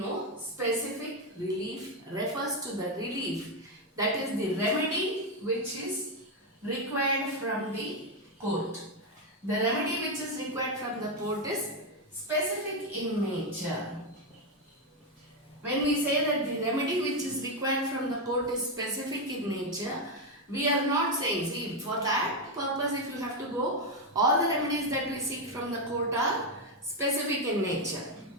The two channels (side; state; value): both; normal; correlation 0.06